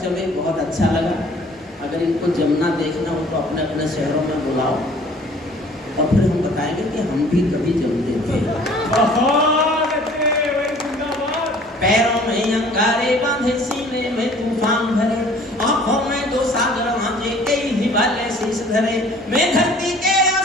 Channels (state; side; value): normal; both; correlation 0.52